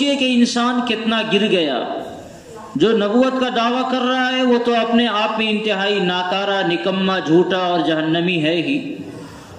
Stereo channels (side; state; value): both; identical; correlation 1.00